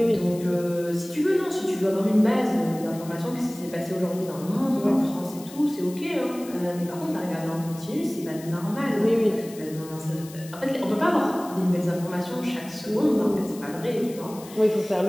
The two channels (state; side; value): noise; left; hiss, 18 dB below the sound